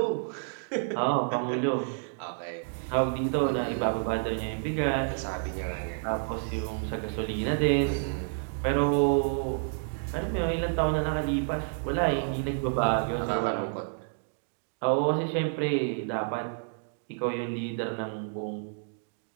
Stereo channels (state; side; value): silent; left; digital silence